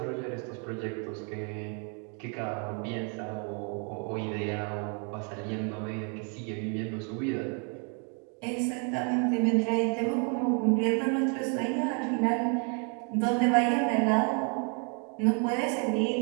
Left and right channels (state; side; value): quieter; left; 38.5 dB